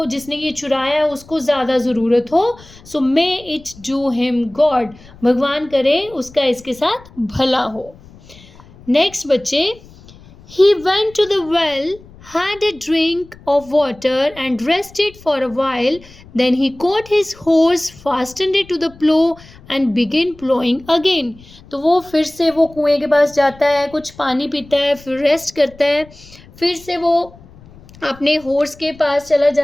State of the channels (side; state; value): left; noise; rumble, 23 dB below the sound